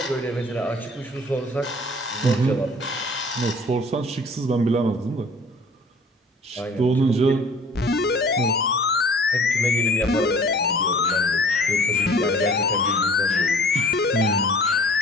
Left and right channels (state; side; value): normal; both; correlation 0.49